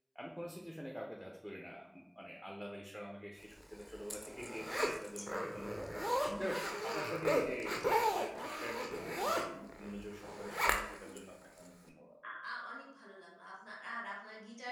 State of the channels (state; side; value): identical; both; correlation 1.00